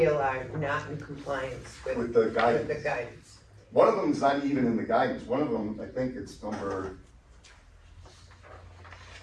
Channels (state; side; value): identical; both; correlation 1.00